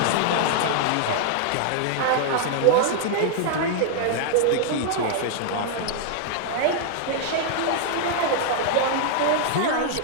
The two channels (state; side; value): different; both; correlation -0.01